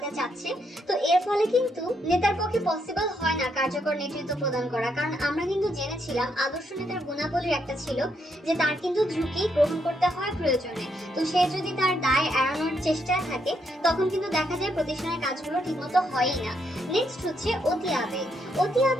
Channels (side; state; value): both; normal; correlation 0.76